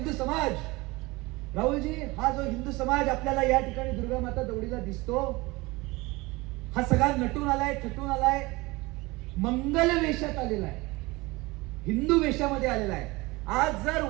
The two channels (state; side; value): quieter; left; 22.7 dB